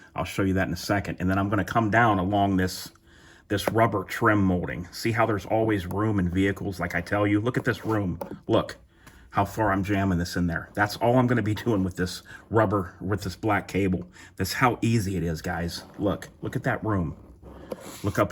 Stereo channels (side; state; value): both; identical; correlation 1.00